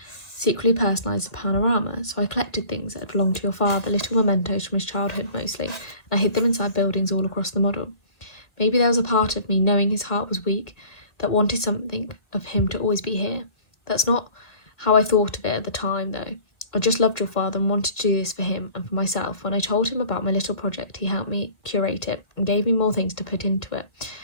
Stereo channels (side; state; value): right; late; 1.9 ms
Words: secretly personalise the panorama, so I collected things that belonged to your father, little mementos from his childhood mostly, and I hid them inside buildings all across the model. Maybe there was a part of me, knowing his heart was weak, that wanted something of him to always be here. That's not how I thought of it at the time, though. I just loved your father and wanted to do this for him and for myself. When I told him about my little project, he helped me curate it and gave me more things to put into it.